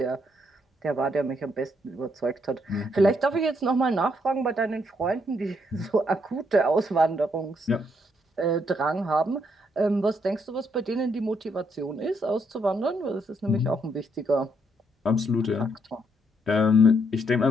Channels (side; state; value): both; normal; correlation 0.73